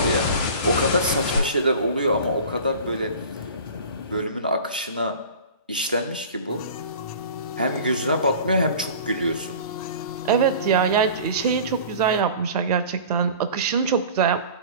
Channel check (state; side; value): inverted; both; correlation -0.40